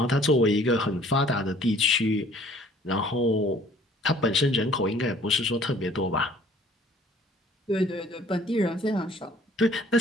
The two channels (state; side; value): normal; both; correlation 0.55